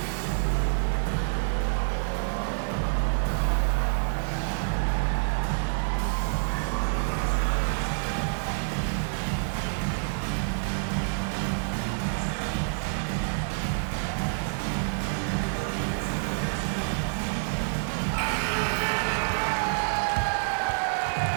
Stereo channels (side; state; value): left; silent; digital silence